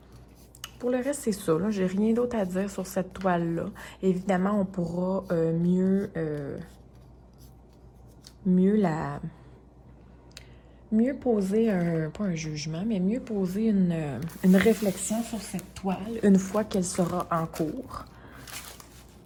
c'est ça. Là, j'ai rien d'autre à dire sur cette toile-là. Évidemment, on pourra mieux poser pas un jugement, mais mieux poser une réflexion sur cette toile une fois qu'elle sera en cours.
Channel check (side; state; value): both; identical; correlation 1.00